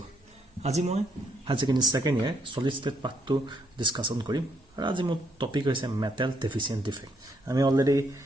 আজি মই হায়াৰ ছেকেণ্ডাৰী সেকেন্ড ইয়াৰ সলিড ষ্টেট পাৰ্টটো ডিসকাশন কৰিম আৰু আজি মোৰ টপিক হৈছে মেটেল ডেফিচিয়েন্ট ডিফেক্ট আমি অলৰেডি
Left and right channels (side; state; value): both; normal; correlation 0.72